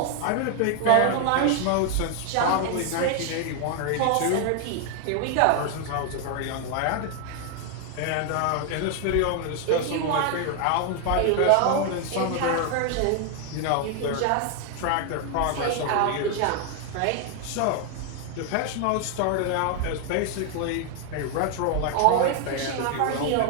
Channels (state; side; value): different; both; correlation 0.00